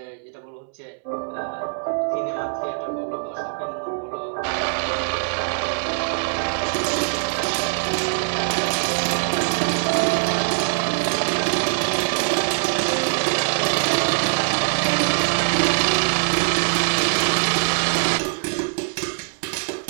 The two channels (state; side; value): silent; left; digital silence